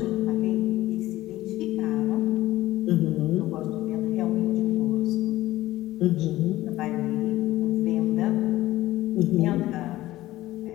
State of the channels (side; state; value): right; quieter; 16.2 dB